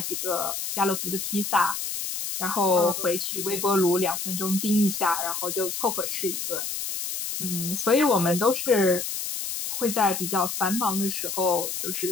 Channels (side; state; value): left; noise; hiss, 4 dB below the sound